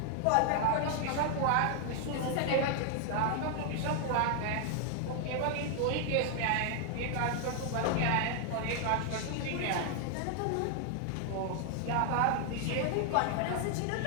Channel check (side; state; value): both; different; correlation 0.00